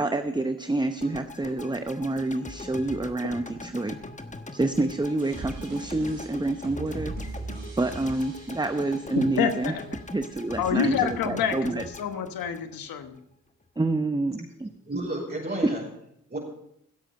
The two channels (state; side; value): normal; both; correlation 0.63